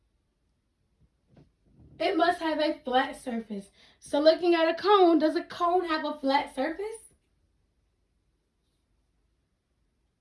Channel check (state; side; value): identical; both; correlation 1.00